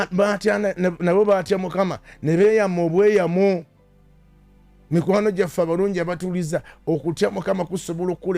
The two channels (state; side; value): identical; both; correlation 1.00